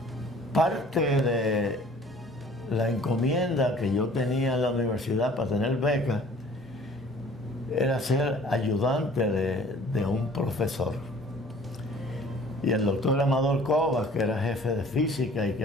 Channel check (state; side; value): normal; both; correlation 0.51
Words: Parte de la encomienda que yo tenía en la universidad para tener becas era ser ayudante de un profesor. Y el doctor Amador Covas, que era jefe de física y que